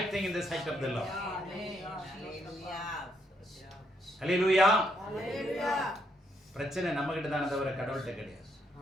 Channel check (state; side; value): normal; both; correlation 0.75